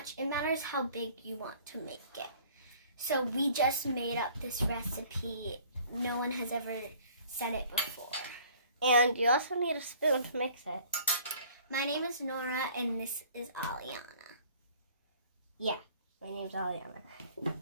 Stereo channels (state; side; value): inverted; both; correlation -0.53